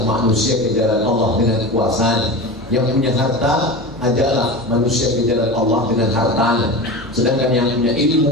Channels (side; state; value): both; normal; correlation 0.28